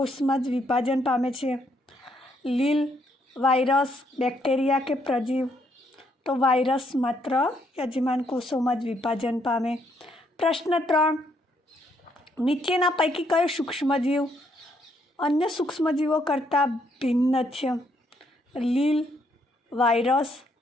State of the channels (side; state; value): both; normal; correlation 0.72